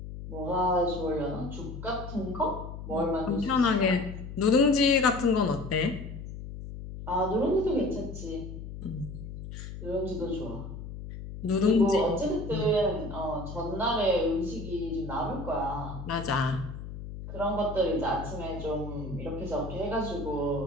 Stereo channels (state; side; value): noise; left; hum, 10 dB below the sound